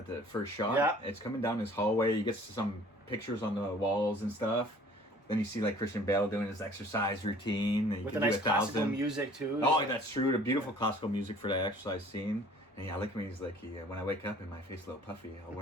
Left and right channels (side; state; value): both; normal; correlation 0.52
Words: the first shot. Yeah, it's coming down his hallway. You get some pictures on the walls and stuff. Then you see Christian Bale doing his exercise routine. With the nice classical music too. Oh, that's true. The beautiful classical music for that exercise scene. And I like when he's like, when I wake up and my face a little puffy, I'll